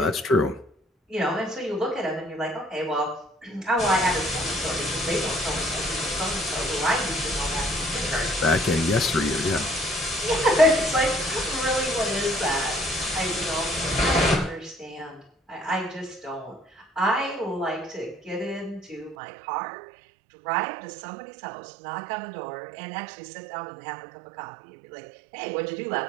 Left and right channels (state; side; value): drops out; left; at 19.2 s